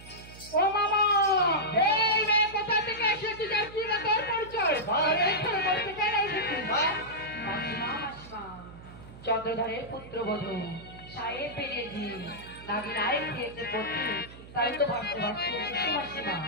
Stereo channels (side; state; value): right; noise; hum, 17 dB below the sound